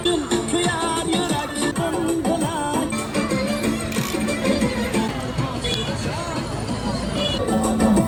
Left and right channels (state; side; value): identical; both; correlation 1.00